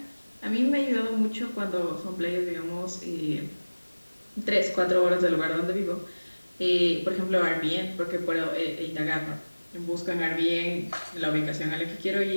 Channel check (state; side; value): inverted; both; correlation -1.00